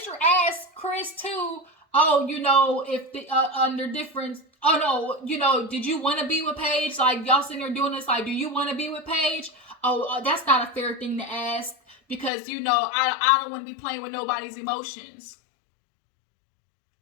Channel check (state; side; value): drops out; right; at 12.3 s